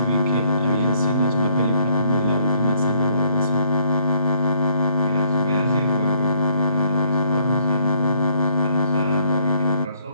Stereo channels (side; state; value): both; inverted; correlation -0.67